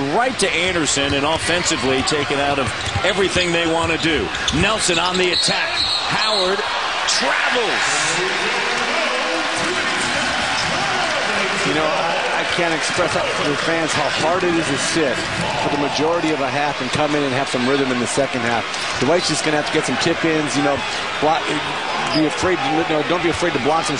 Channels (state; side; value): identical; both; correlation 1.00